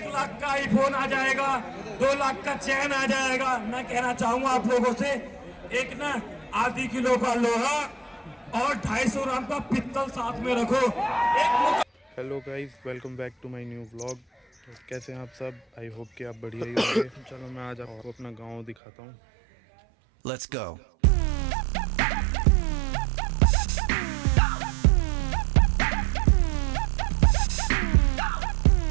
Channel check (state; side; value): drops out; left; at 18.8 s